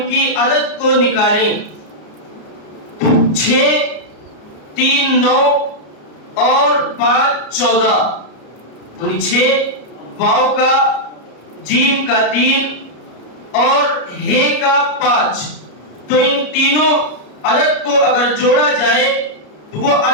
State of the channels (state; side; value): late; right; 33 ms